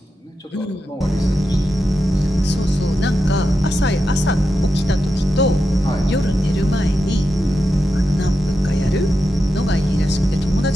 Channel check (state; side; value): normal; both; correlation 0.88